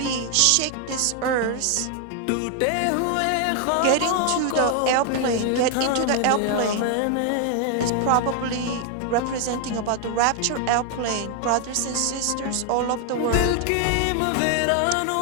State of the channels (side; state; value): both; different; correlation 0.00